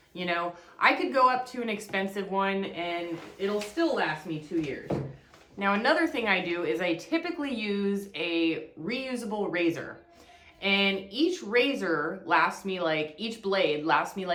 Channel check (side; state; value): both; identical; correlation 1.00